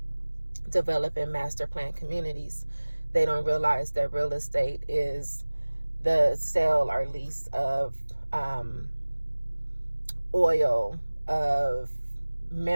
developing master plan communities. They don't realize that real estate is the sale or lease of oil, of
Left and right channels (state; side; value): inverted; both; correlation -1.00